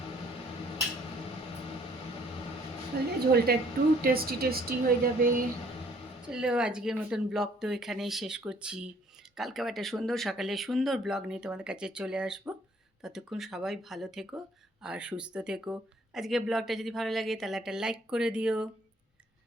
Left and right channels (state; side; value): normal; both; correlation 0.61